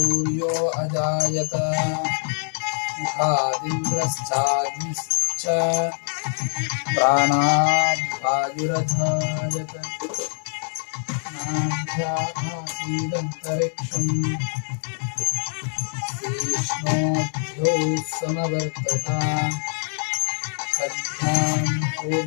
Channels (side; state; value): right; silent; 63 dB below the other